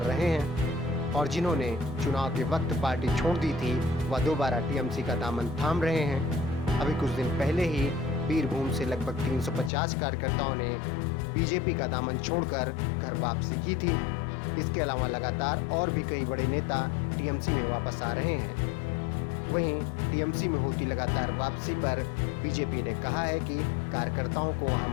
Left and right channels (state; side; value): drops out; right; at 9.7 s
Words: रहे हैं और जिन्होंने चुनाव के वक्त पार्टी छोड़ दी थी वह दोबारा टीएमसी का दामन थाम रहे हैं। अभी कुछ दिन पहले ही बीरभूम से लगभग 350 कार्यकर्ताओं ने बीजेपी का दामन छोड़कर घर वापसी की थी। इसके अलावा लगातार और भी कई बड़े नेता टीएमसी में वापस आ रहे हैं। वहीं टीएमसी में होती लगातार वापसी पर बीजेपी ने कहा है कि कार्यकर्ताओं को